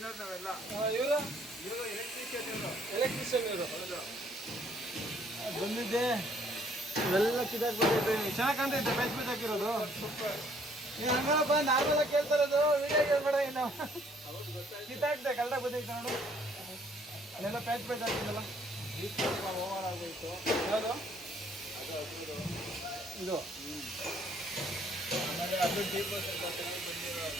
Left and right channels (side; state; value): both; normal; correlation 0.64